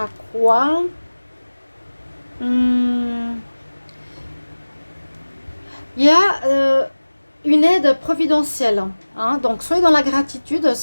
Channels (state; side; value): inverted; both; correlation -1.00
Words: quoi? Il y a une aide providentielle. Hein, donc, soyez dans la gratitude,